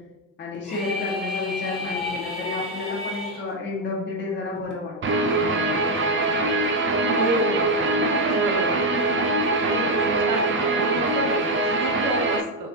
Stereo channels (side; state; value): both; normal; correlation 0.04